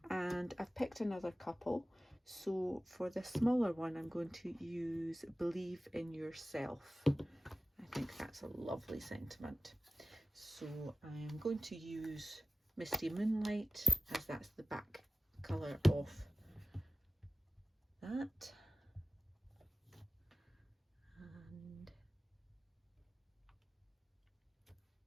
and I've picked another couple. So for the smaller one, I'm going to use Believe in Yourself. I think that's a lovely sentiment. So I'm going to use Misty Moonlight, as that's the back colour of that. And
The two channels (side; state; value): both; normal; correlation 0.93